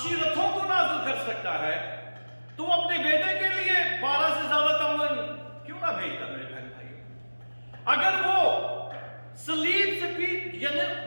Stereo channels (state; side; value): inverted; both; correlation -1.00